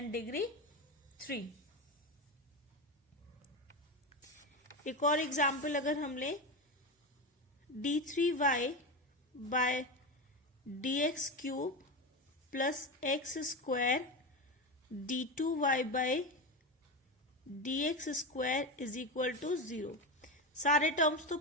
degree 3। एक और एग्जाम्पल अगर हम लें d3y by d x cube plus x square d2y by d x square is equal to 0। सारे terms तो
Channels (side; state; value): both; normal; correlation 0.18